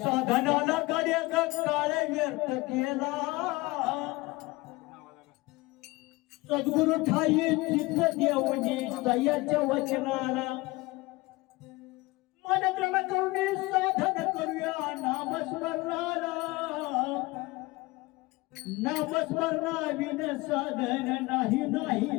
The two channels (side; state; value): right; quieter; 22.1 dB